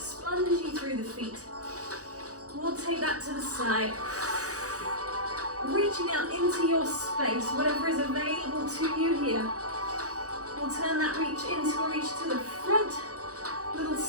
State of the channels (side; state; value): left; late; 0.66 ms